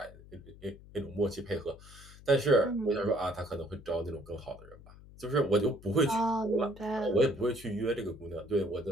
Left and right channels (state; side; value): noise; left; hum, 20 dB below the sound